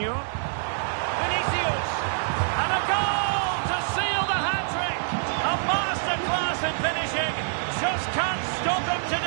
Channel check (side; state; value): left; silent; 61 dB below the other